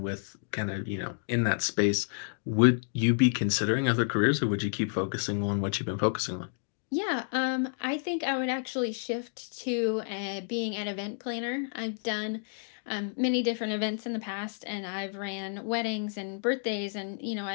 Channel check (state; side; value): silent; right; digital silence